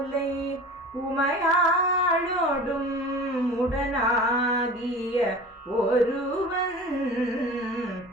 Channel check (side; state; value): both; normal; correlation 0.38